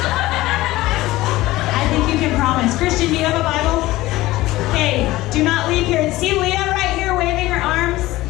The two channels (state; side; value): quieter; right; 17.8 dB